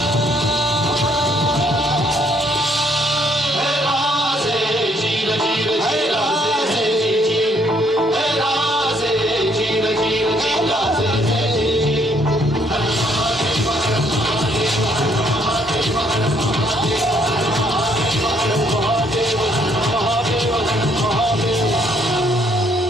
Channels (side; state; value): both; normal; correlation 0.67